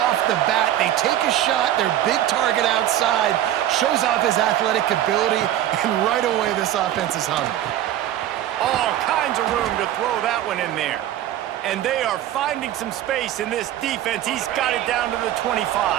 the bat? They take a shot, their big target outside, shows off his athletic ability, and right away this offense is hungry. All kinds of room to throw that one in there. And they are finding some space in this defense. He's got it down to the 25.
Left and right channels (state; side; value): quieter; left; 12.4 dB